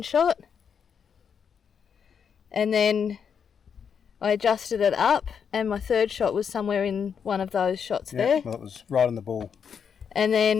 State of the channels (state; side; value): quieter; right; 7.1 dB